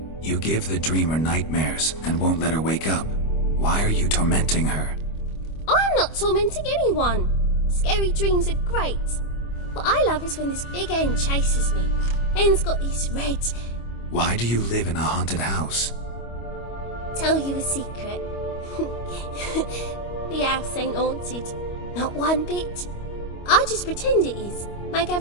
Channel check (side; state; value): right; late; 25 ms